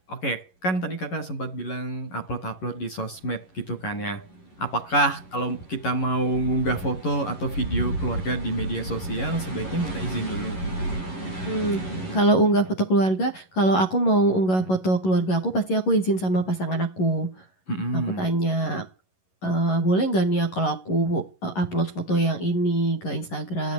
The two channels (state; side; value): late; right; 11 ms